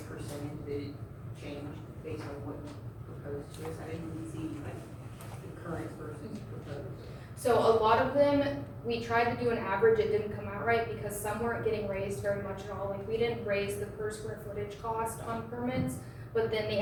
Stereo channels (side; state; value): both; identical; correlation 1.00